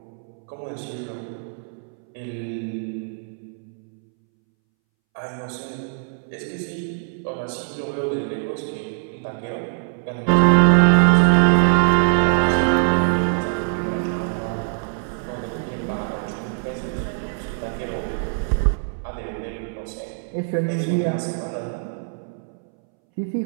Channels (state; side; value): silent; left; 64 dB below the other